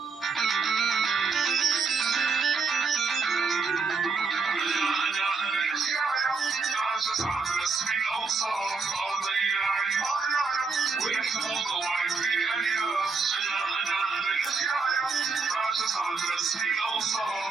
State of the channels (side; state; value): left; quieter; 4.7 dB